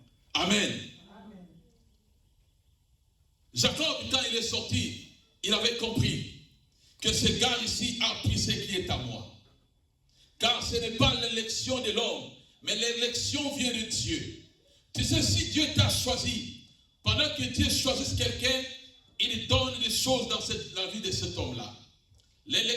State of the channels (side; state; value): both; identical; correlation 1.00